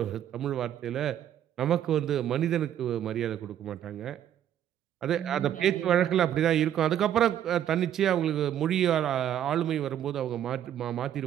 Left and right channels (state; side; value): quieter; left; 10.6 dB